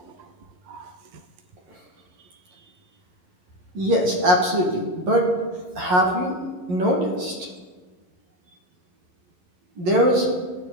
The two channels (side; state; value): left; late; 11 ms